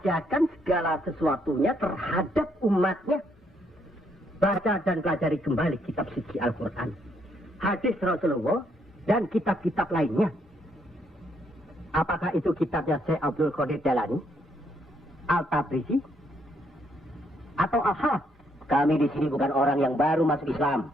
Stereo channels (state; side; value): normal; both; correlation 0.72